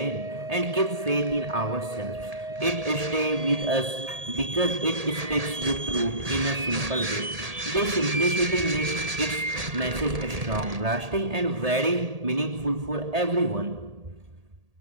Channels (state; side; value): late; left; 1.8 ms